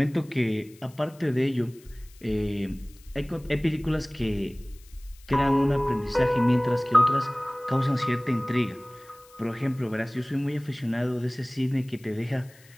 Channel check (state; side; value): noise; left; hiss, 26 dB below the sound